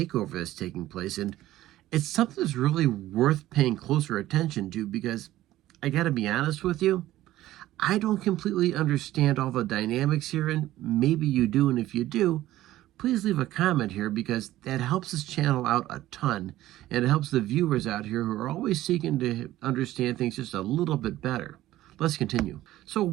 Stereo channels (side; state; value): left; quieter; 15.0 dB